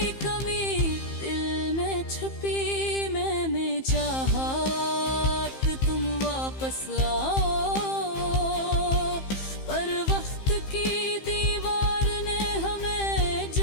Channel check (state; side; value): late; right; 15 ms